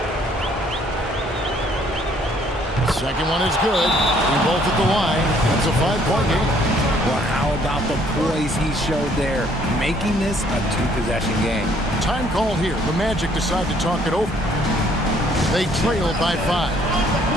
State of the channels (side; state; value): both; normal; correlation 0.63